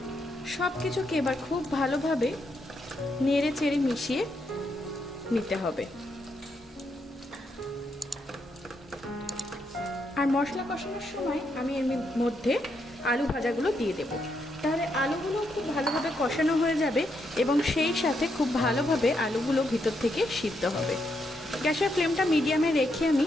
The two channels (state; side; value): normal; both; correlation 0.79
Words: সব কিছুকে এবার খুব ভালোভাবে নেড়ে চেড়ে মিশিয়ে নিতে হবে। আর মশলা কষানোর সময় আমি এর মধ্যে আলু ভাজাগুলো দিয়ে দেব। তাহলে আলুগুলো খুব ভালোভাবে কষানো হয়ে যাবে এবং সেই সাথে খুব ভালোভাবে আলুগুলো ভিতর থেকে সিদ্ধ হবে। গ্যাসের ফ্লেমটা মিডিয়ামে রেখে আমি